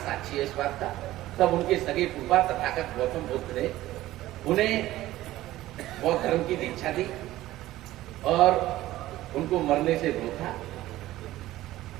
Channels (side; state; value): left; quieter; 15.7 dB